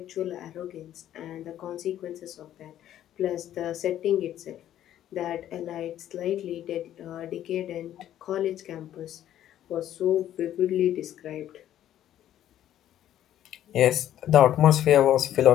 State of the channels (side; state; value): right; quieter; 11.8 dB